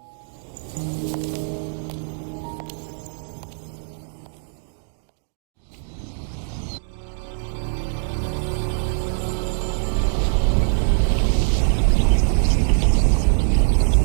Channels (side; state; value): left; silent; digital silence